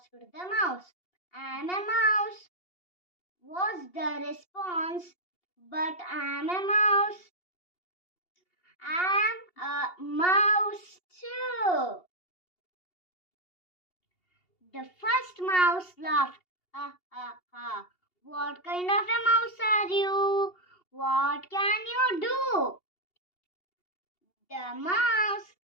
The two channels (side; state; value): right; late; 2.8 ms